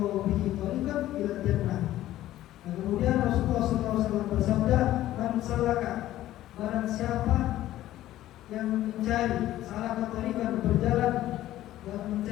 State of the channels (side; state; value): right; quieter; 14.2 dB